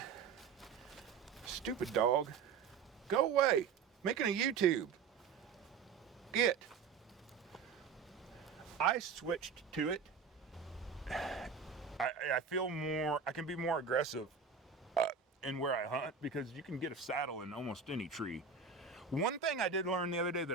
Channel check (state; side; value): quieter; left; 5.8 dB